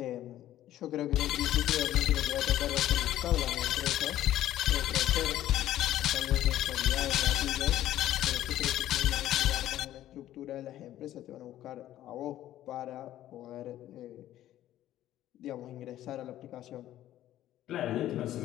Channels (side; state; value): right; quieter; 13.1 dB